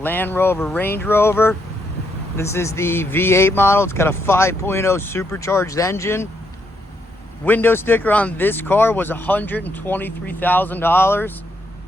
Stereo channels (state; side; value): normal; both; correlation 0.77